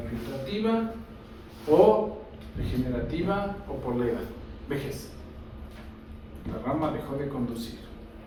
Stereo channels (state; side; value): identical; both; correlation 1.00